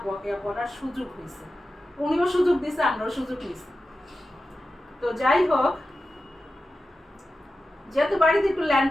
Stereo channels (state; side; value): normal; both; correlation 0.92